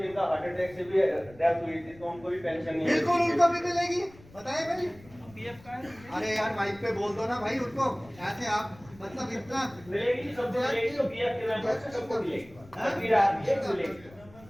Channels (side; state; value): left; noise; rumble, 23 dB below the sound